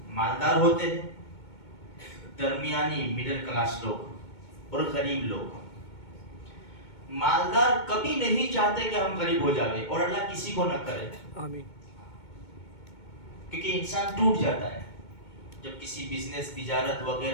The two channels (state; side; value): late; right; 2.2 ms